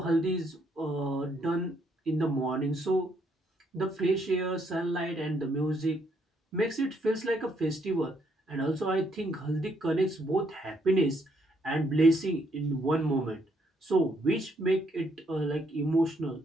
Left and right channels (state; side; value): normal; both; correlation 0.72